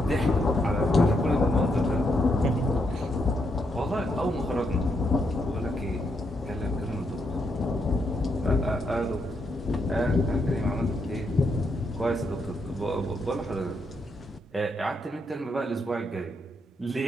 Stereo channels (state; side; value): normal; both; correlation 0.79